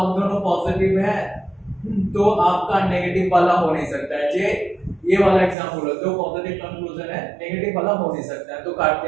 पॉजिटिव है तो आपका नेगेटिव वाला हो नहीं सकता है। ये वाला एग्जांपल है, दो पॉजिटिव कंक्लूजन है, नेगेटिव वाला हो नहीं सकता है, तो काट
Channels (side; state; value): left; drops out; at 5.6 s